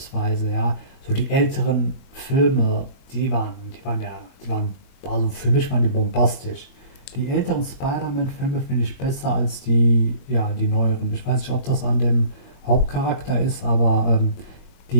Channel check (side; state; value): right; late; 21 ms